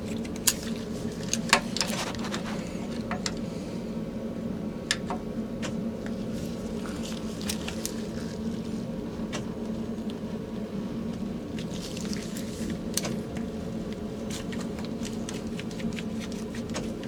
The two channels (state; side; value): identical; both; correlation 1.00